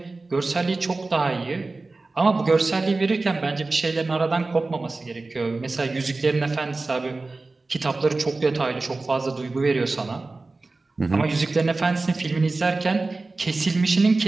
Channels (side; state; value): left; quieter; 3.4 dB